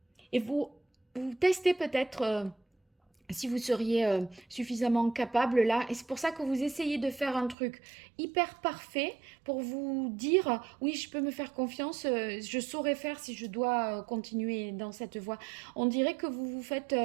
vous testez peut-être si vous seriez suffisamment capable là. Et c'est pour ça que vous essayez de faire un truc hyper parfait pour vous dire, oui, je peux me faire confiance, je saurais faire si je dois continuer dans cette voie. On dirait que vous vous faites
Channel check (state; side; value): drops out; left; at 7.6 s